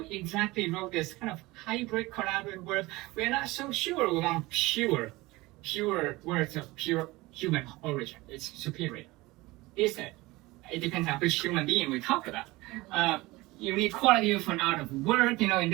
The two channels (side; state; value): left; quieter; 20.8 dB